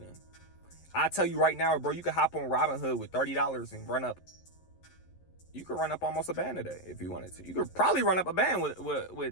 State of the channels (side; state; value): right; late; 11 ms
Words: I tell you right now, bro, you can hop on Robinhood with $30 and run up. You could run up almost a band a day if you wanted to. You could probably run up a band with